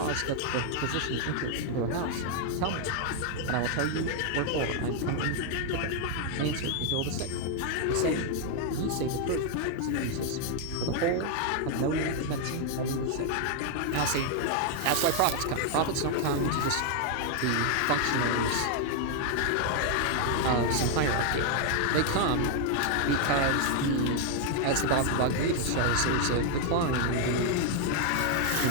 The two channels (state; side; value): different; both; correlation 0.00